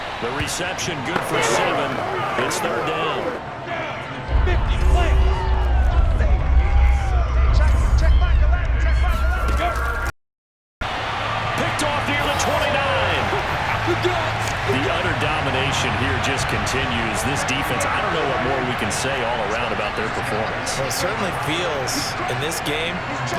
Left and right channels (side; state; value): both; identical; correlation 1.00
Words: The reception good for 7. It's 3rd down. 50, play. Check back the left. Check back the left. Picked off near the 29. The utter domination here just continues. This defense, I don't know what more we can say all around about their performance. Well, it certainly feels in this game